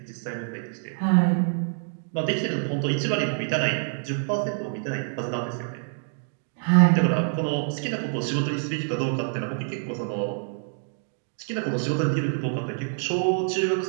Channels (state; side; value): silent; left; 61 dB below the other